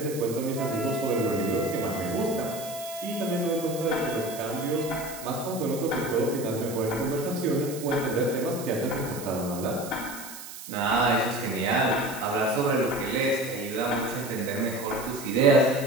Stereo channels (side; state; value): right; noise; hiss, 12 dB below the sound